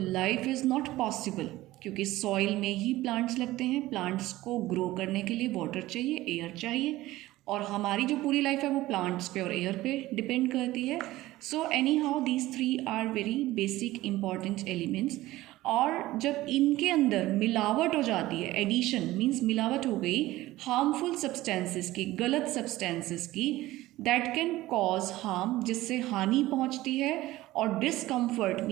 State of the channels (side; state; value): left; quieter; 17.1 dB